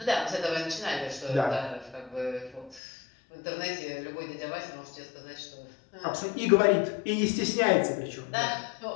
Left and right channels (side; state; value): right; drops out; at 2.8 s